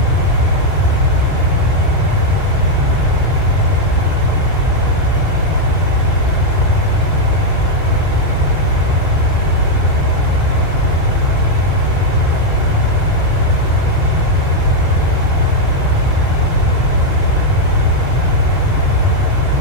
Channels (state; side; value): late; left; 2.8 ms